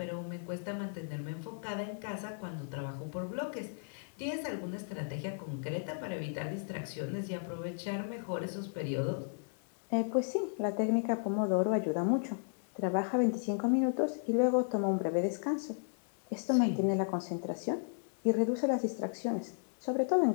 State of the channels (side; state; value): right; silent; 55 dB below the other